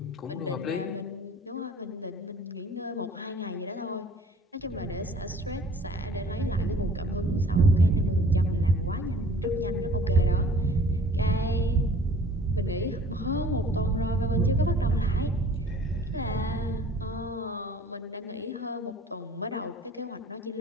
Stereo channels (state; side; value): normal; both; correlation 0.50